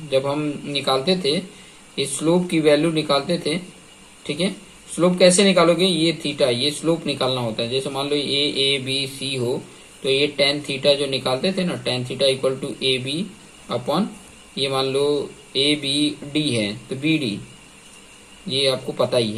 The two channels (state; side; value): identical; both; correlation 1.00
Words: जब हम निकालते थे, इस स्लोप की वैल्यू निकालते थे। ठीक है, स्लोप कैसे निकालोगे, ये थीटा, ये स्लोप निकालना होता है। जैसे मान लो ए बी सी हो तो ये टेन थीटा जो निकालते थे ना, tan theta equal to a b upon, ये मान लो ए बी डी है तो बी डी, ये आपको पता ही